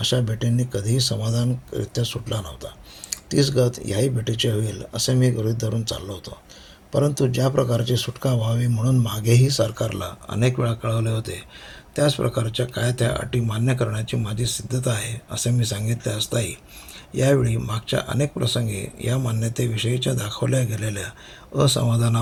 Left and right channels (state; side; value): identical; both; correlation 1.00